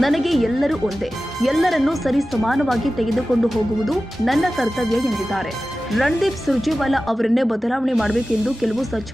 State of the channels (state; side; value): normal; both; correlation 0.95